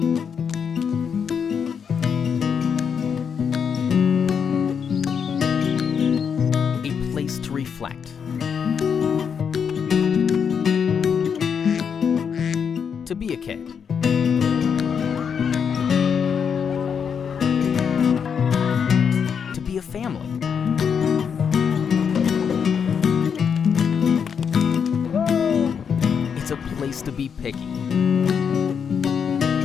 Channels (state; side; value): quieter; right; 7.0 dB